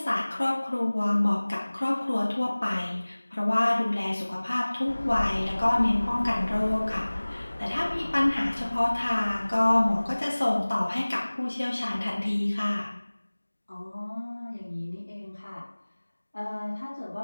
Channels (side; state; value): both; inverted; correlation -1.00